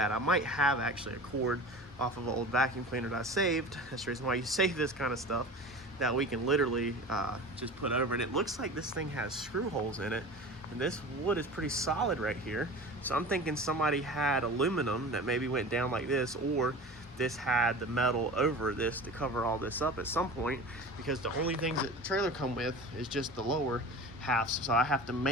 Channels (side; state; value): both; normal; correlation 0.35